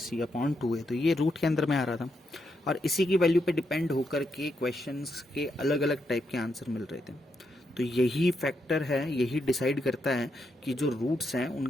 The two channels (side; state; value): both; normal; correlation 0.81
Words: upon 2 है, तो ये रूट के अंदर में आ रहा था और इसी की वैल्यू पे डिपेंड होकर के क्वेश्चंस के अलग अलग टाइप के आंसर मिल रहे थे। तो यही फैक्टर है, यही डिसाइड करता है कि जो रूट्स हैं